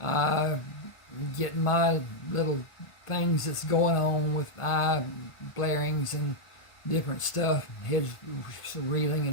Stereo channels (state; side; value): late; right; 1.5 ms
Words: getting my little things that's going on with eye blarings and different stuff, head reeling